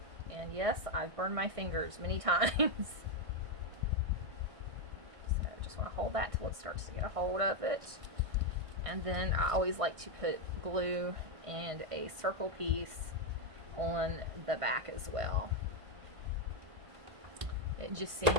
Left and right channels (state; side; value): late; left; 1.6 ms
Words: And yes, I've burned my fingers many times. So just want to hold that till it starts to get a hold of it. And then I always like to put glue and a circle piece on the back as well. It just